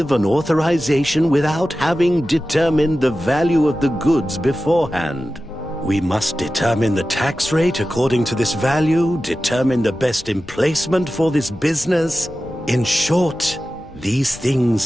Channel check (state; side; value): noise; left; rumble, 20 dB below the sound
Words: an authorization without having determined the value of the goods beforehand. We must determine the tax rate according to this value, determine the best emplacement for this business. In short, these